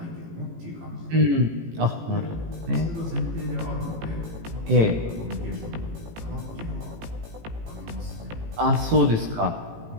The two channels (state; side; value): late; left; 18 ms